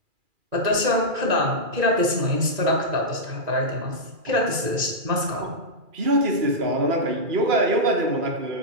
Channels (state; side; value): late; left; 2.4 ms